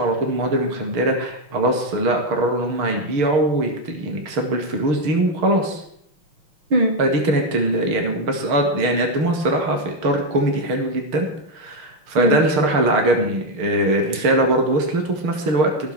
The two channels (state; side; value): late; left; 6.5 ms